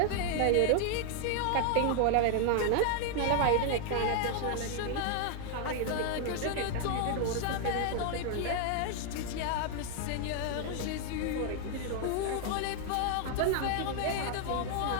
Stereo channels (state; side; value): different; both; correlation 0.00